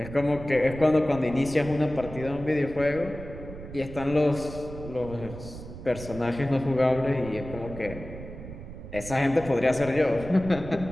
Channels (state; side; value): noise; right; rumble, 12 dB below the sound